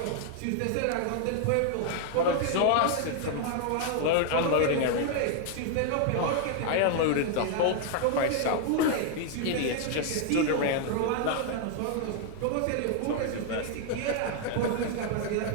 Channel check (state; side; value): different; both; correlation 0.00